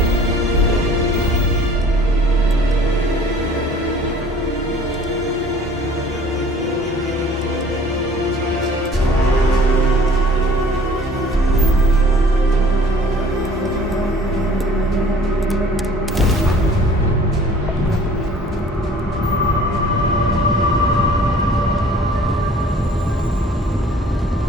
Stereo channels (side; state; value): both; normal; correlation 0.51